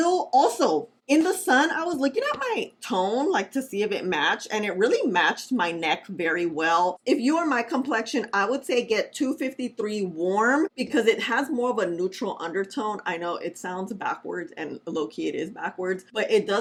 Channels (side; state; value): both; identical; correlation 1.00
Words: also, In the sun, I was looking at my tone, like to see if it matched, and it really matched my neck very well. If you are my complexion, I would say get 253 warm because it has more of a neutral undertone. I know it sounds backwards, and low-key it is backwards, but it